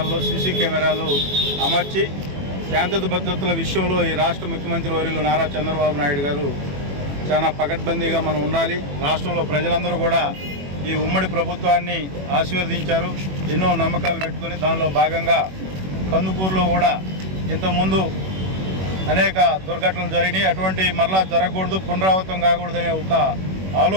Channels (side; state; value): left; late; 21 ms